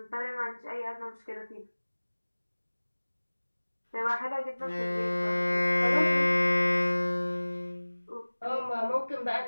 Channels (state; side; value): inverted; both; correlation -1.00